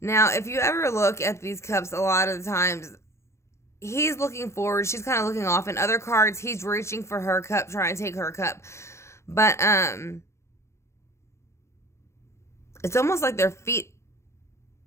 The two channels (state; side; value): late; right; 0.13 ms